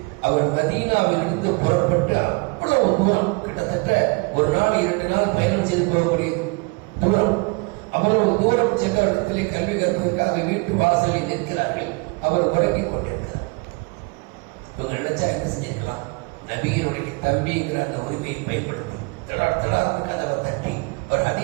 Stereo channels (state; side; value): quieter; left; 29.5 dB